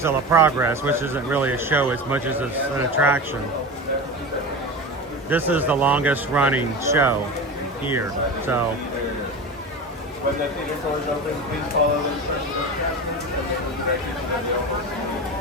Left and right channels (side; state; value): both; normal; correlation 0.27